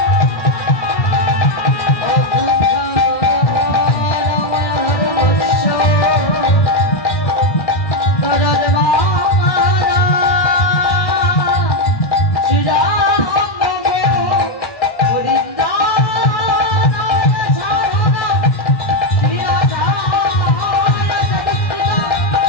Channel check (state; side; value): late; right; 1.1 ms